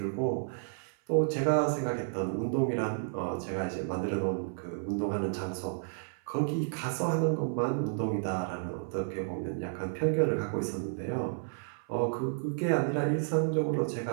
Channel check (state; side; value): silent; left; 57 dB below the other